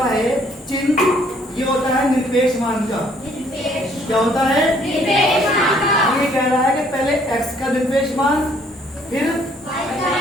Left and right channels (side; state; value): both; normal; correlation 0.63